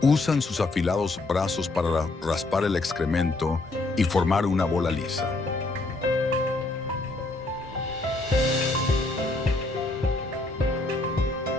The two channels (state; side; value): quieter; right; 3.1 dB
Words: Usan sus afilados brazos para raspar el excremento y formar una bola lisa.